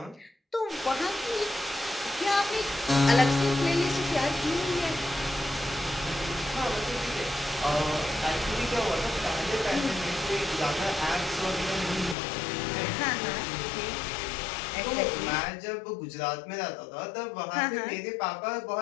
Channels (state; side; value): drops out; right; at 12.2 s